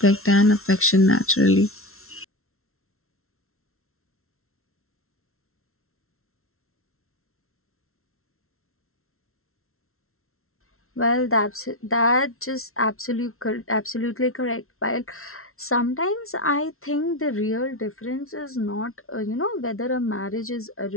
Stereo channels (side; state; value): right; late; 0.62 ms